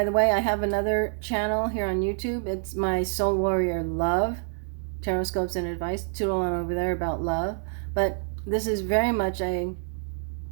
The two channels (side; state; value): left; silent; 60 dB below the other